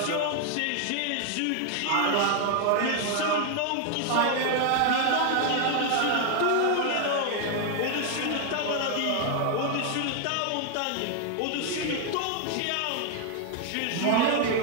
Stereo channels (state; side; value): different; both; correlation 0.00